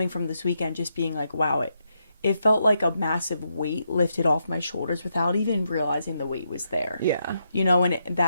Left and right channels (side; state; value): both; inverted; correlation -0.81